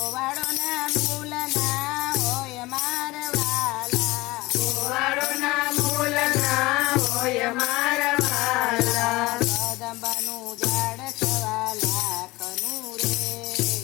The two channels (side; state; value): right; quieter; 20.9 dB